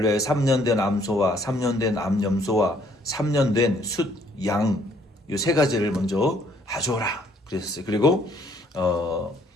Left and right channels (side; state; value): both; normal; correlation 0.64